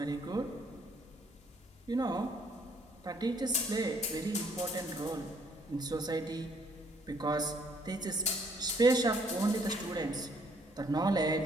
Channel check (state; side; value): normal; both; correlation 0.65